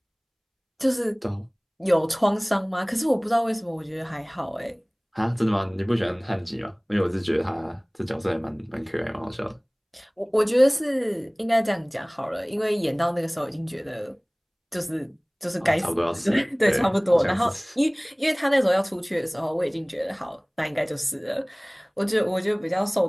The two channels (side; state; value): both; identical; correlation 1.00